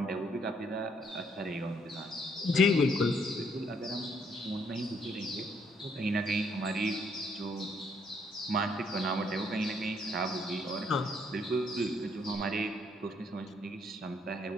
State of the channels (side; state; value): both; normal; correlation 0.69